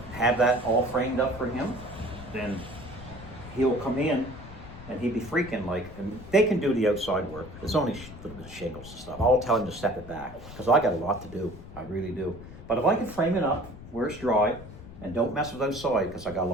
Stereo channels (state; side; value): noise; left; rumble, 15 dB below the sound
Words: have that all framed up for him. Then he'll come in and he'd be freaking like, and they can do the outside work. It's only a little bit of shingles and stuff. I'll tell him to step it back because I got a lot to do. I really do. But if I can frame it up where it's dry and don't mess with outside because I got a